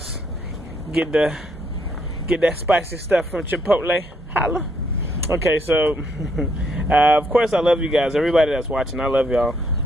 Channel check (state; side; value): normal; both; correlation 0.72